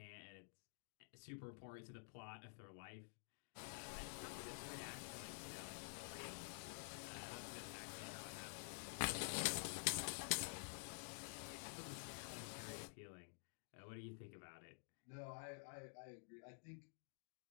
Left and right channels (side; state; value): right; silent; digital silence